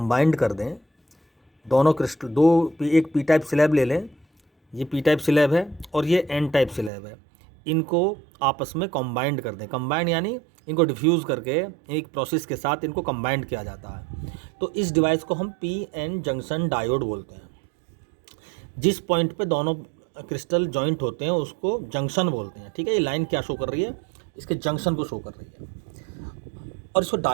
कर दें, दोनों क्रिस्टल एक पी टाइप स्लैब ले लें, ये पी टाइप स्लैब है और ये एन टाइप स्लैब है, इनको आपस में कंबाइंड कर दें। कंबाइंड यानी इनको डिफ्यूज़ करके एक प्रोसेस के साथ इनको कंबाइंड किया जाता है। तो इस डिवाइस को हम पी एन जंक्शन डायोड बोलते हैं। जिस पॉइंट पे दोनों क्रिस्टल जॉइंट होते हैं उसको जंक्शन बोलते हैं। ठीक है, ये लाइन क्या शो कर रही है, इसके जंक्शन को शो कर रही है। और इसको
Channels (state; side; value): drops out; left; at 6.9 s